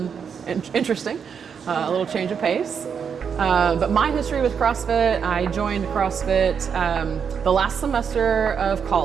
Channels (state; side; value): quieter; left; 6.9 dB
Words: interesting, a little change of pace. But my history with CrossFit, I joined CrossFit the last semester of